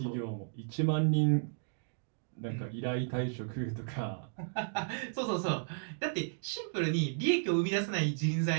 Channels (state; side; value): silent; left; digital silence